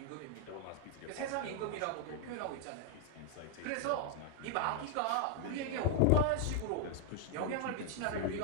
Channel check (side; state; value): both; different; correlation 0.00